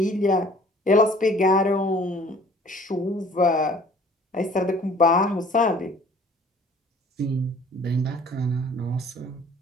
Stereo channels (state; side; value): normal; both; correlation 0.52